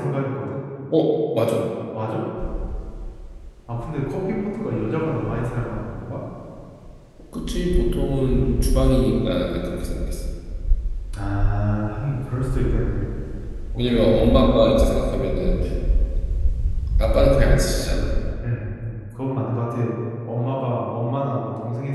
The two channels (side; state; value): both; identical; correlation 1.00